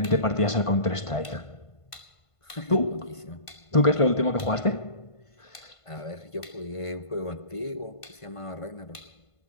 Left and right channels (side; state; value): right; late; 1.5 ms